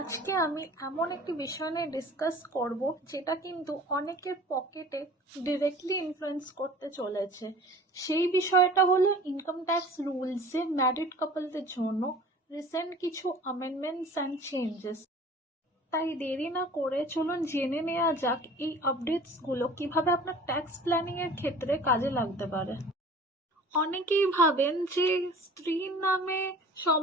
আমি এমন একটি বিষয় নিয়ে ডিসকাস করব যেটা কিন্তু অনেকের পকেটে ডিরেক্টলি ইনফ্লুয়েন্স করতে চলেছে। সেই বিষয়টা হলো ইনকাম ট্যাক্স রুলসে ম্যারিড কাপলদের জন্য রিসেন্ট কিছু অ্যামেন্ডমেন্টস অ্যান্ড চেঞ্জেস। তাই দেরি না করে চলুন জেনে নেওয়া যাক এই আপডেটসগুলো কিভাবে আপনার ট্যাক্স প্ল্যানিংয়ের ক্ষেত্রে কাজে লাগতে পারে। অনেকেই ভাবেন যে স্ত্রীর নামে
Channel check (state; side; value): normal; both; correlation 0.45